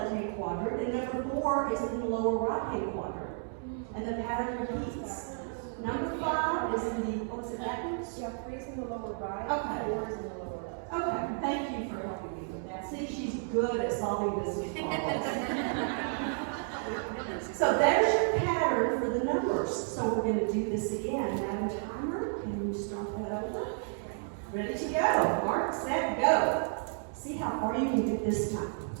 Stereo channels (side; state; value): left; silent; 56 dB below the other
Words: quadrant, and number 4 is in the lower right-hand quadrant. And the pattern repeats. Number 5 is in the, what's it backwards? Yeah, 3 is in the lower right, Okay. 4 is in the lower left. Okay, thank you for helping me with that. See, she's good at solving business problems. So there's your pattern for the numbers. So we're going to do this again. Madam Timer, can you start that over? Ready to go. Mark, set, go. See how far you can get this time.